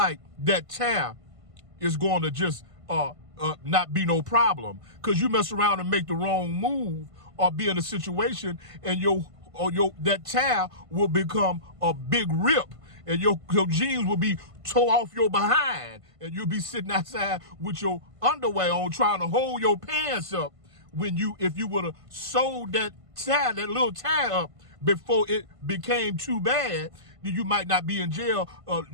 that tear is going to just not be no problem, because you mess around and make the wrong move or be in a situation and that tear will become a big rip, and your jeans will be tore off your behind, and you'll be sitting outside with your underwear on trying to hold your pants up if you would have sewed that little tear up before it became too bad, then you might not be in jail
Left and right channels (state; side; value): late; left; 1.5 ms